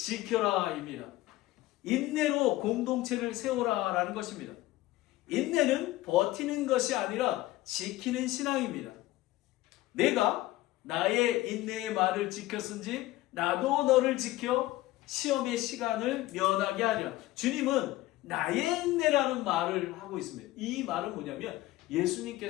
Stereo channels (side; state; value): right; quieter; 17.1 dB